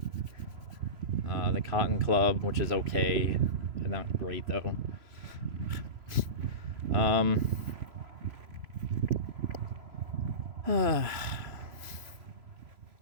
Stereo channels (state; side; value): late; left; 3.0 ms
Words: The Cotton Club, which is okay, but not great though.